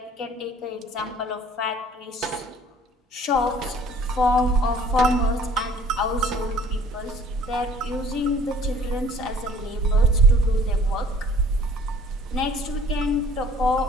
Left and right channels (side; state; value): both; normal; correlation 0.53